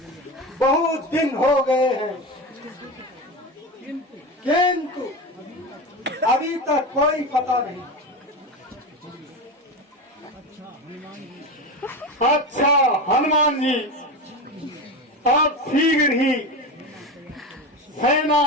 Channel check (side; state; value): both; normal; correlation 0.21